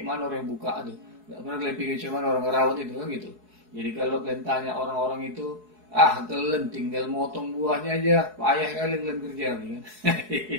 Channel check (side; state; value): left; late; 4.7 ms